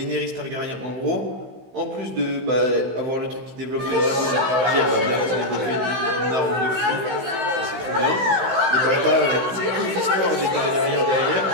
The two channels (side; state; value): left; late; 16 ms